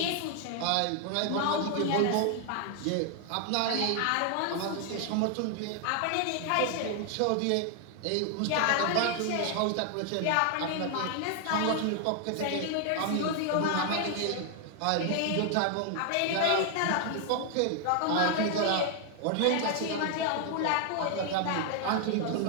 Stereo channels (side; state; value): both; different; correlation 0.00